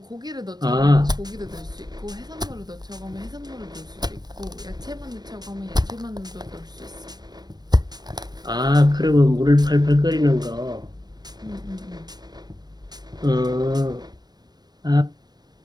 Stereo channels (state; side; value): late; left; 0.19 ms